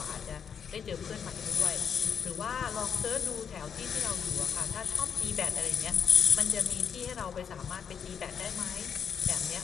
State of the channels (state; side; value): quieter; right; 7.4 dB